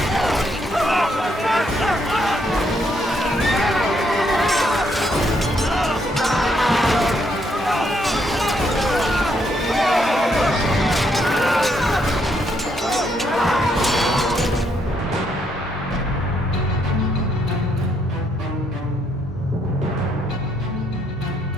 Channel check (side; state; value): both; normal; correlation 0.74